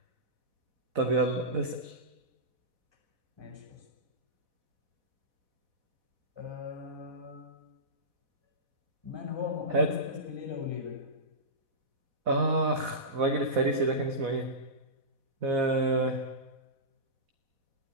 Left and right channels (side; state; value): left; late; 4.1 ms